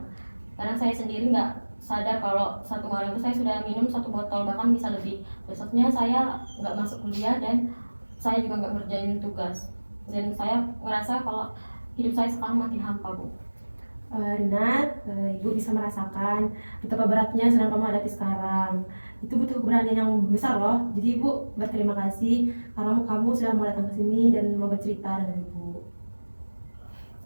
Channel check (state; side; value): inverted; both; correlation -1.00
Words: karena saya sendiri nggak sadar kalau satu malam itu saya sudah minum 1 botol, bahkan bisa lebih. Besoknya saya nggak masuk kuliah dan saya juga nggak ngerjain tugas, dan saya merasa kalau hidup saya sekarang makin hampa, Bu. Rina, Ibu bisa merasakan betapa beratnya sedang kamu hadapi sekarang. Itu butuh keberanian yang besar loh. Jadi Ibu berterima kasih karena kamu sudah mau datang ke sini dan mau bercerita dengan Ibu.